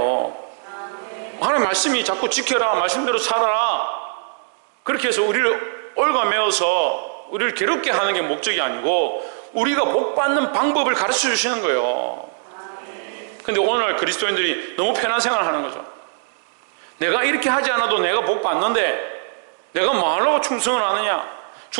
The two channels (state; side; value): silent; left; digital silence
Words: 하나님 말씀이 자꾸 지켜라, 말씀대로 살아라, 그렇게 해서 우리를 얽어매어서 우리를 괴롭게 하는 게 목적이 아니고 우리가 복받는 방법을 가르쳐 주시는 거예요. 근데 오늘날 그리스도인들이 너무 편한 생활을 하는 거죠. 내가 이렇게 하지 않아도 내가 복받는데 내가 뭐 하려고 충성을 하느냐?